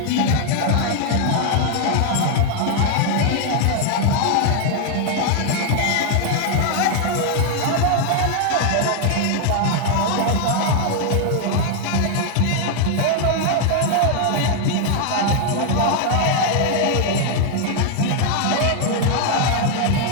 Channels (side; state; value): both; different; correlation 0.00